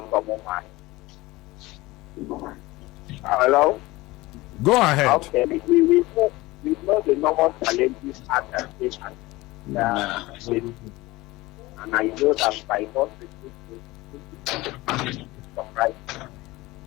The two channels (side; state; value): right; quieter; 20.2 dB